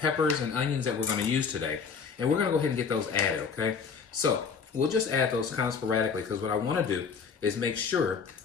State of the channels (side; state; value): right; quieter; 5.9 dB